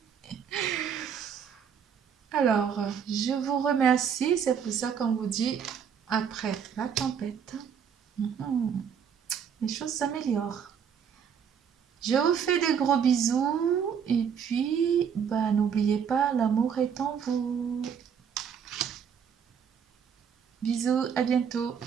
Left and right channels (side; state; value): left; quieter; 7.5 dB